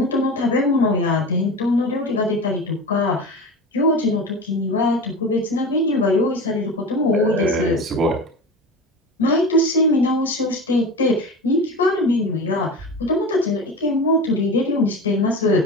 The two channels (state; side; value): normal; both; correlation 0.30